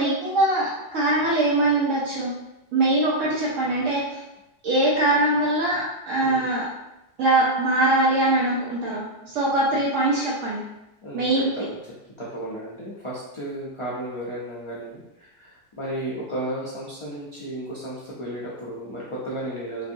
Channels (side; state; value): both; normal; correlation -0.03